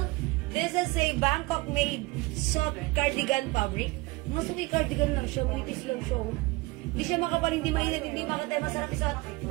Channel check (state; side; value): quieter; left; 23.3 dB